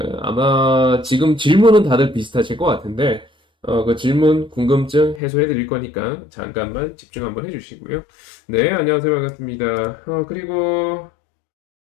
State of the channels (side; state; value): right; drops out; at 5.2 s